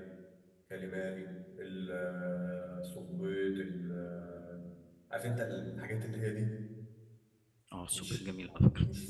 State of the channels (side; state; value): both; identical; correlation 1.00